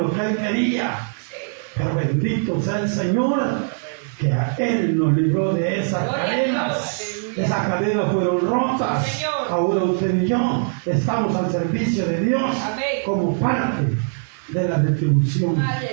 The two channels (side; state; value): left; silent; 65 dB below the other